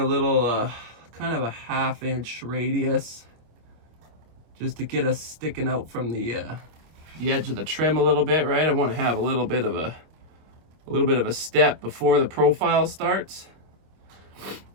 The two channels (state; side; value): late; left; 25 ms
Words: little kind of a 1/2 inch radius, just to get us sticking out from the edge of the trim a little bit, right? I want to have a little bit of a step before the profile starts.